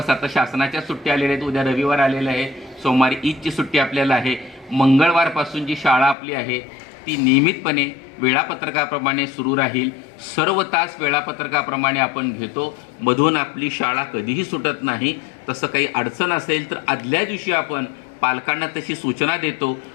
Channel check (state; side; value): drops out; right; at 6.2 s